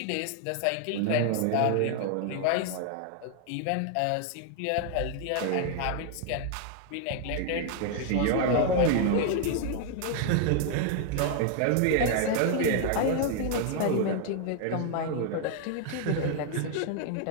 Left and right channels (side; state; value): both; different; correlation 0.00